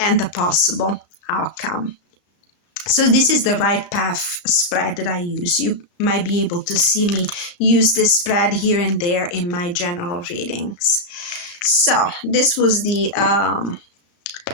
the possible outcome. So this is the Right Path spread that I use. You might be able to see me use this spread here and there in my general readings. So this was the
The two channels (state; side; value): late; right; 35 ms